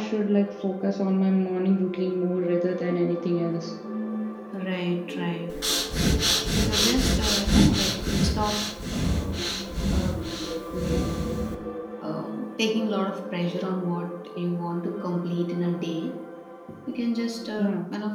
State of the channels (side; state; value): both; identical; correlation 1.00